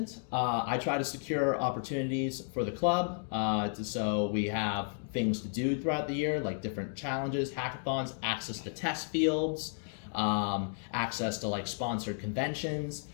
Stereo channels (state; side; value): silent; right; digital silence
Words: I try to secure opportunities for the club, so we have things to do throughout the year, like different challenges, hackathons, access to test fields, access to like sponsored conventions,